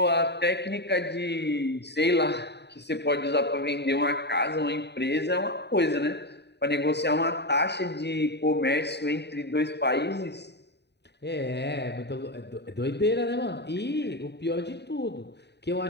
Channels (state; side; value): late; right; 0.50 ms